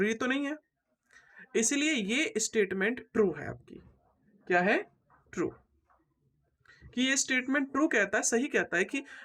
तो नहीं है। इसलिए ये स्टेटमेंट ट्रू है आपकी। क्या है? ट्रू। कि ये स्टेटमेंट ट्रू कहता है, सही कहता है कि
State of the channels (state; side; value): identical; both; correlation 1.00